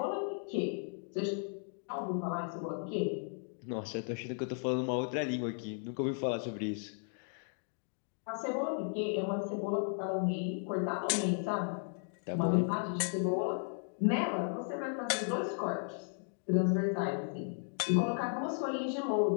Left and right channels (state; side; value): silent; right; 54 dB below the other